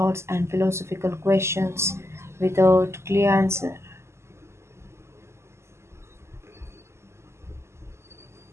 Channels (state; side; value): late; left; 0.13 ms